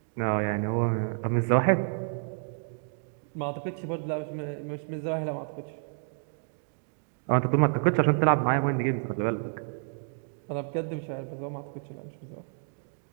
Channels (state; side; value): silent; left; 58 dB below the other